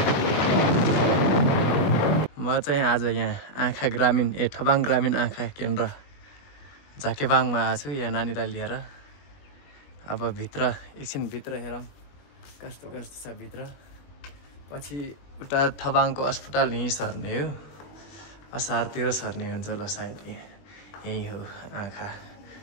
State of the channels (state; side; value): late; right; 20 ms